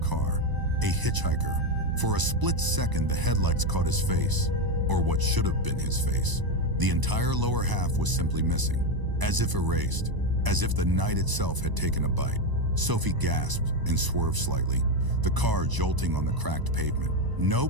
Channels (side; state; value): left; late; 1.0 ms